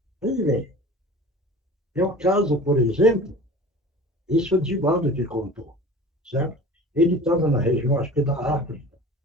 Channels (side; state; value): both; normal; correlation 0.39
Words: Veja bem, é o caso, por exemplo, isso o Divaldo que contou, certo? Ele estava na região, acho que da África.